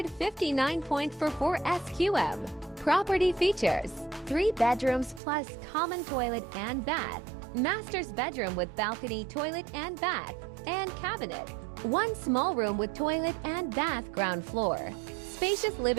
SQM. Property features 3 bedrooms plus common toilet and bath. Master's bedroom with balcony, toilet and bath, and cabinet. 1 small room with toilet and bath, ground floor. Spacious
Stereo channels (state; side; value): drops out; left; at 5.2 s